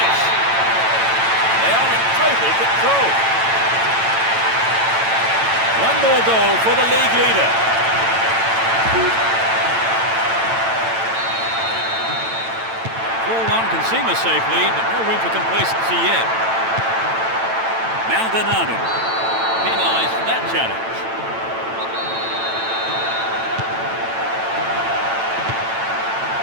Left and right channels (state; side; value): late; left; 8.9 ms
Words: They are in total control. One more goal for the league leader. Can seem a safe lead, but no room for complacency yet. Maldonado penalised for that challenge.